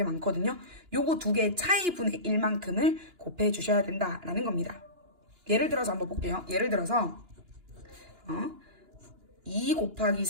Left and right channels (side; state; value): left; late; 2.9 ms